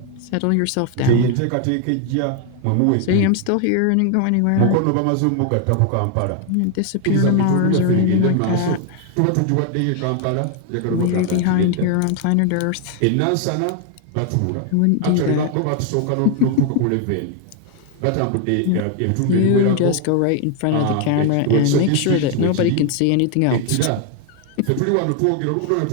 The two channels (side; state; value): both; different; correlation 0.00